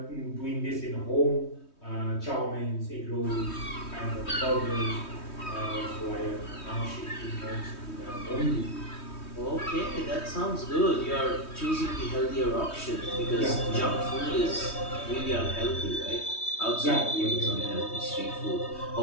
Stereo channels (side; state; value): right; late; 3.2 ms